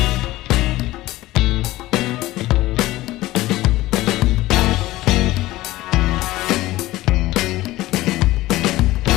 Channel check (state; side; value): quieter; right; 17.3 dB